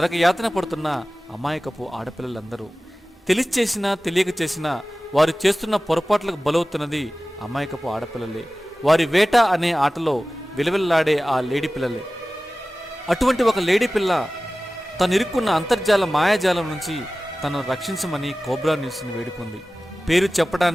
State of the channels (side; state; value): both; normal; correlation 0.97